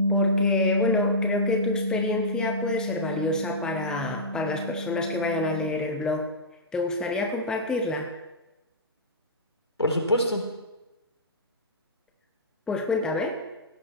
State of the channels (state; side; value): normal; both; correlation -0.17